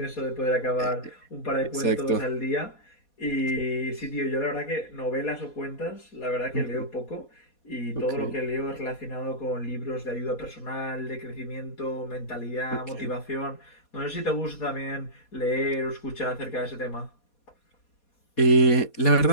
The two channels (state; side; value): late; right; 4.2 ms